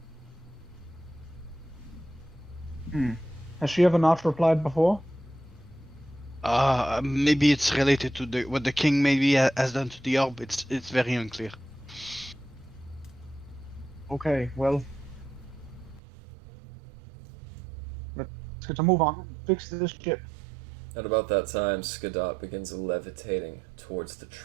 Has she ever not replied before? Maybe it's related to what the king maybe has done to the orb. It's very unclear. Okay, well. Let's get to move on. Fix this ship. At about that time, Skadot begins levitating towards the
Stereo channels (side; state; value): left; drops out; at 16.0 s